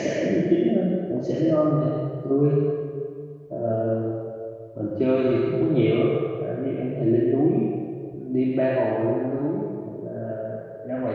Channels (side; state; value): both; identical; correlation 1.00